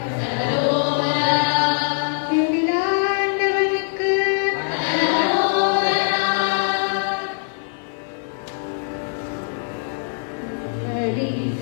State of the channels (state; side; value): silent; right; digital silence